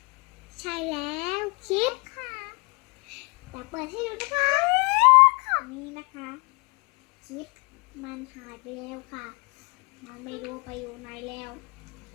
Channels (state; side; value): quieter; right; 30.4 dB